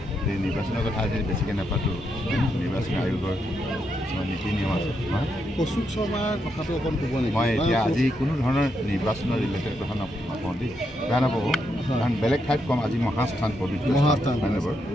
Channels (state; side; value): normal; both; correlation 0.81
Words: এই নিৰ্বাচনৰ কথা আজি বেছিকৈ নাপাতো নিৰ্বাচন আয়োগৰ কিছুমান নীতি নিয়ম আছে কৌশিক শৰ্মাৰ কথাটো অকণ ক'ব নেকি মই এতিয়া আজি কোনো ধৰণৰ নিৰ্বাচনৰ ৰিলেটেড কথা নকওঁ দেই বেয়া নাপাব কাৰণ বেলেগ ঠাইত কম আজি মহাস্থান পবিত্ৰ মহাস্থান